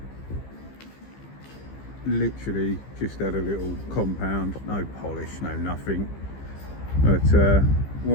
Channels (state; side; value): late; right; 15 ms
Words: Literally just had a little compound, no polish, no nothing, but